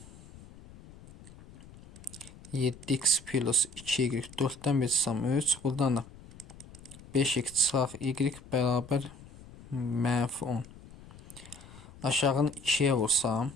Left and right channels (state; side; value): noise; left; rumble, 19 dB below the sound